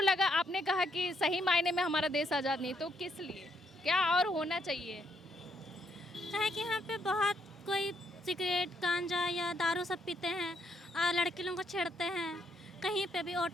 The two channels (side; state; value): both; normal; correlation 0.75